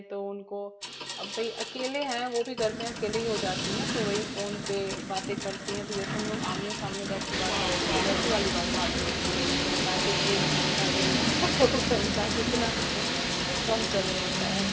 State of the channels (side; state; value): both; identical; correlation 1.00